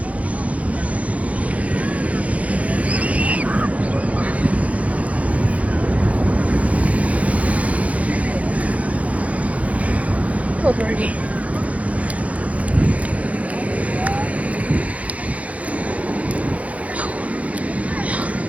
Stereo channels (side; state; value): left; late; 0.067 ms